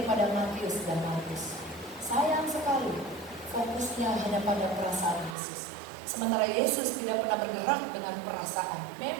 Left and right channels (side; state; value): left; drops out; at 5.4 s